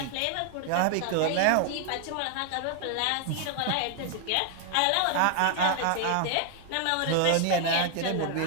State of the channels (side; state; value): both; different; correlation 0.00